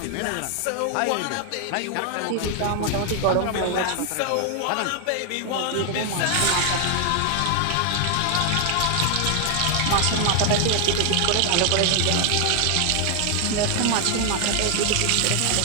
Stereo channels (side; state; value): both; different; correlation 0.00